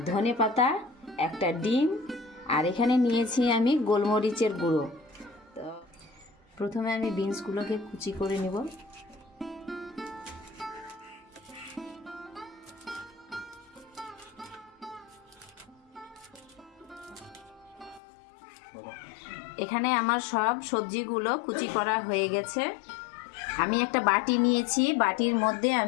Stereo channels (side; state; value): right; drops out; at 18.0 s